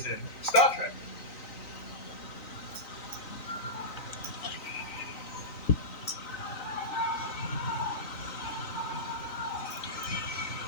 in Star Trek.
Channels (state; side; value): late; right; 3.9 ms